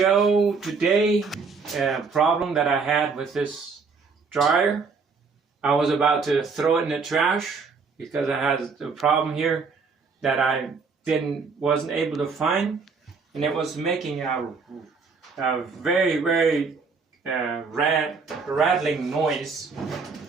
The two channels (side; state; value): left; quieter; 4.9 dB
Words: today a problem that I had with this dryer. I was about to throw it in the trash because I had a problem here that I wasn't able to find, and it was making a very rattling noise.